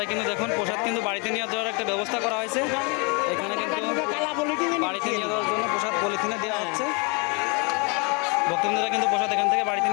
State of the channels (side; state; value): right; quieter; 32.3 dB